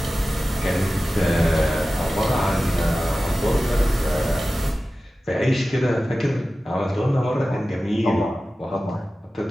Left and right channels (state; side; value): normal; both; correlation 0.95